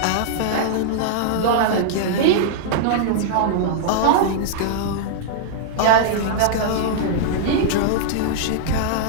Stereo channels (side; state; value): both; different; correlation -0.01